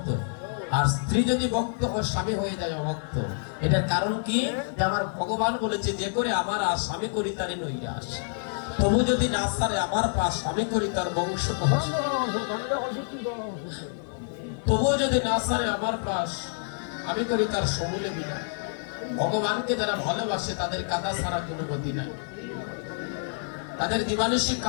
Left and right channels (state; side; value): silent; right; digital silence